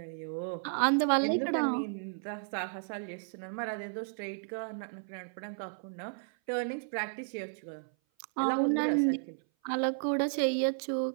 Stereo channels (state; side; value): silent; left; 56 dB below the other